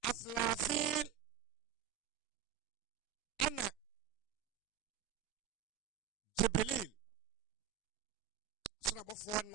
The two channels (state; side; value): quieter; left; 10.4 dB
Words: Aslafil ana Jibril sura bofo